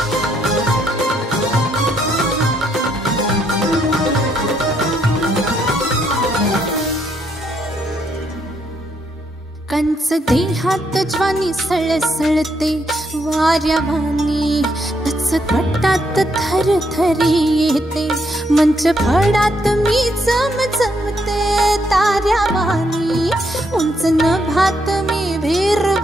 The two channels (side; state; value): both; normal; correlation 0.75